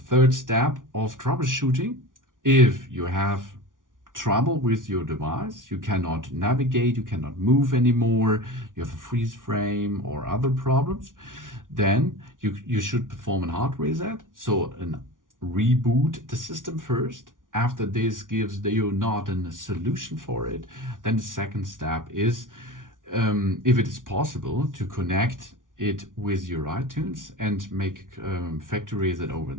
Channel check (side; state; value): left; late; 0.88 ms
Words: third step of troubleshooting. If you have trouble with your device, you cannot navigate, you cannot move anymore, you have a freeze frame or other problems, then you should perform a hard reset. So reboot the system first. After this gives you not a solution for it, then the second step is, if it is possible, to connect it with your iTunes and make factory reset over